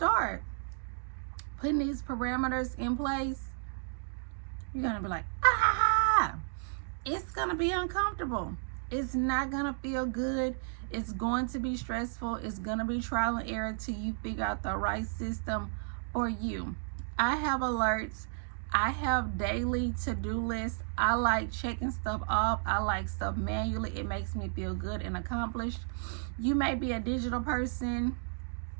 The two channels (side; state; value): left; silent; digital silence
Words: putting these parameters in place, you're going to be like, it's going to be uncomfortable. It's not going to feel good. It's going to be stressful. It's going to be trial and error till you figure out the right system for you. I have alerts. I have daily to-do lists. I like checking stuff off. I like stuff manually. It makes me feel good and accomplished. You may be a digital person.